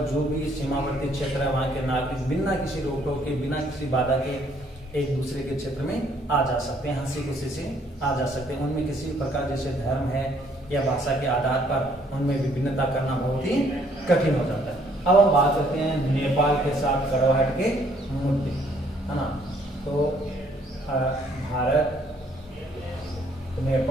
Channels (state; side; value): normal; both; correlation 0.65